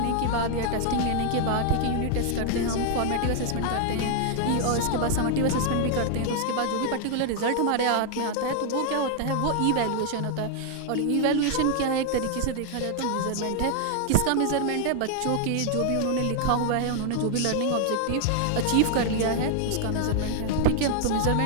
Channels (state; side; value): different; both; correlation 0.00